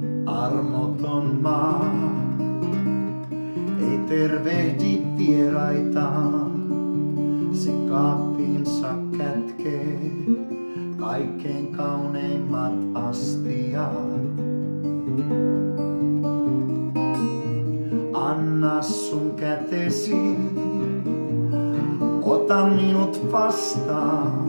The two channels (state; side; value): inverted; both; correlation -1.00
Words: Armoton maa ei tervehdi vieraitaan, se kaappiinsa kätkee kaikkein kauneimmat astiat. Anna sun kätesi, ota minut